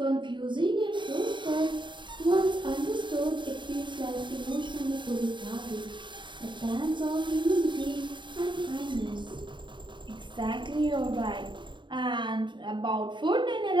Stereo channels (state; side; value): late; left; 0.23 ms